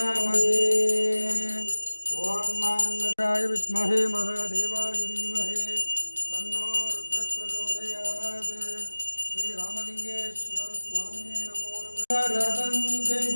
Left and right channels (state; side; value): inverted; both; correlation -1.00